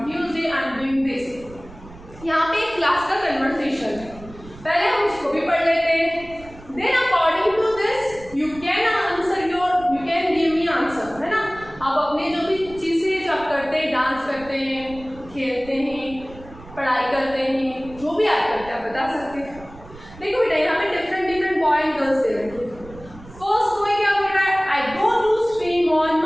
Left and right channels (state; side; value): noise; right; rumble, 19 dB below the sound